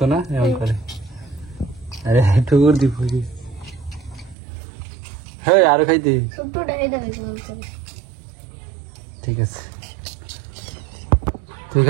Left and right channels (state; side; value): drops out; left; at 4.4 s